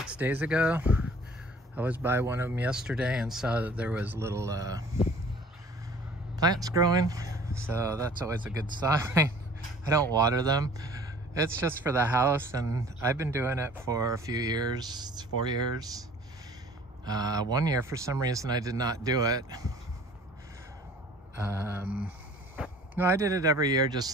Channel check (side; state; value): both; normal; correlation 0.50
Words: days ago. I was by one of them yesterday and saw that there was little plants growing, so that's always a good sign. I don't water them. It's just for the house, and I've been doing it for a few years. It's 4 years. 1 year, for some reason, I did not do it. No, I did it every year,